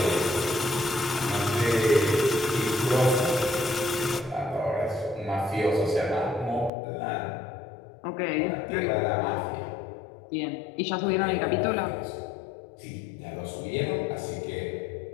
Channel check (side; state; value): right; drops out; at 6.7 s